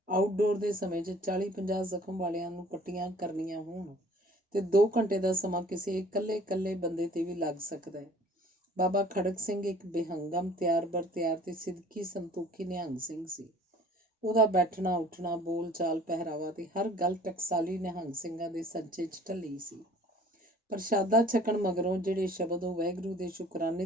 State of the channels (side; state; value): both; normal; correlation 0.51